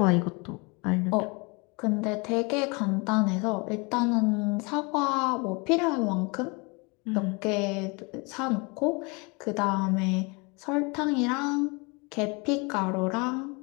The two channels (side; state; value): right; quieter; 29.1 dB